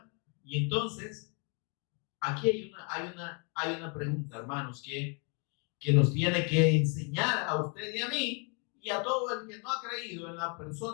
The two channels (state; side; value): quieter; right; 36.3 dB